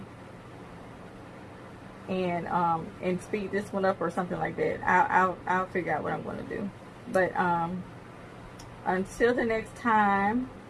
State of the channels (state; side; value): identical; both; correlation 1.00